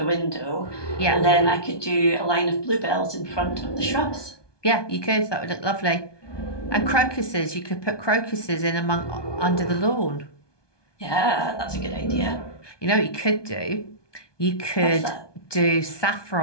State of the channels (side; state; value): right; late; 1.2 ms